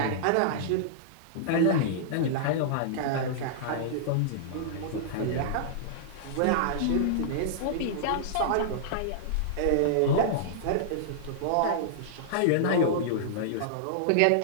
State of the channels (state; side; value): different; both; correlation -0.02